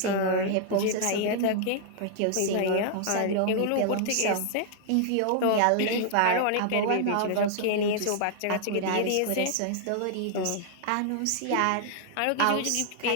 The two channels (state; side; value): different; both; correlation -0.01